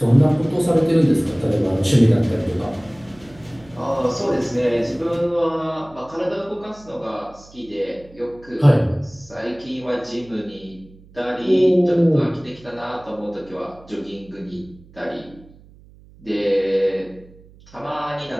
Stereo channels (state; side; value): noise; right; hum, 24 dB below the sound